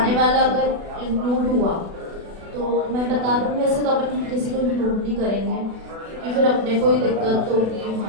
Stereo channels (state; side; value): late; left; 36 ms